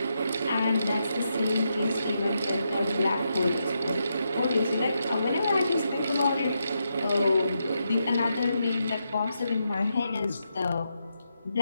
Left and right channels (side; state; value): both; inverted; correlation -0.83